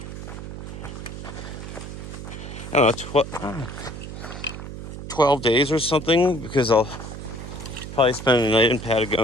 I don't know, 12 days or something, because I'll probably spend a night in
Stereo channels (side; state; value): right; noise; hum, 9 dB below the sound